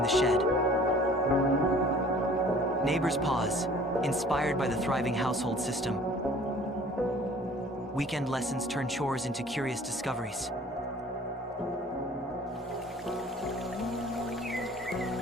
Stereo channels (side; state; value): both; normal; correlation 0.51